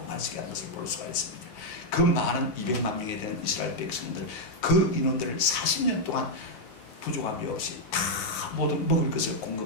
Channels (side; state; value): right; late; 9.2 ms